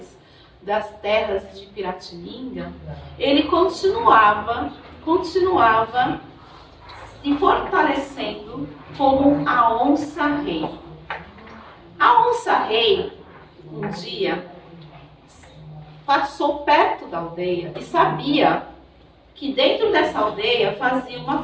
das terras de Piratininga, ele continuava se fortalecendo como a onça-rei. A onça-rei, um dia, passou perto da aldeia e sabia que dentro dessa aldeia fazia uma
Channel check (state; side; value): identical; both; correlation 1.00